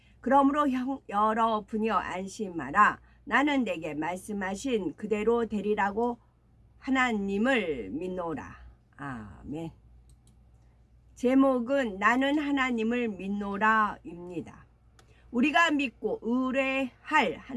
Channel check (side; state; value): both; identical; correlation 1.00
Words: 그러므로 여러분이여 안심하라. 나는 내게 말씀하신 그대로 되리라고 하나님을 믿노라. 아멘. 제목은 나는 하나님을 믿노라입니다. 우리가 믿고 의뢰할